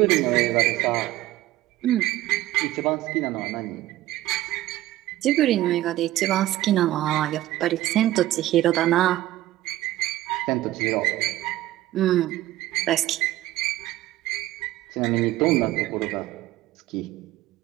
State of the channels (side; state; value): left; quieter; 15.4 dB